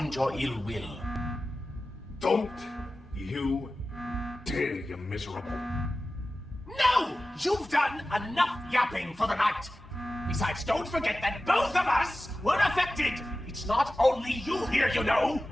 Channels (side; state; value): both; normal; correlation 0.95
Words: your ill will. Don't you dare, you miserable. No! You've done enough yapping for the night! Besides, don't forget that both of us were affected! It's not only you here, you know!